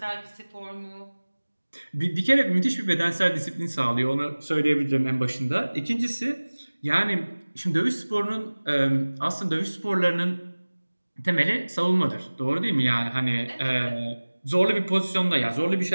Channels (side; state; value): both; inverted; correlation -1.00